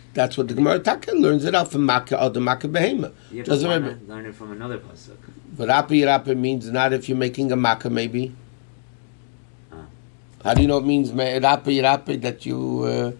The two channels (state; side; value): silent; right; digital silence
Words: That's what the Gemara Taka learns it out from makkah or the makkah behema. Yeah, but why not learn it from another pasuk? But Rapi means not if you're making a makkah, maybe. How do you know it means Rapi that you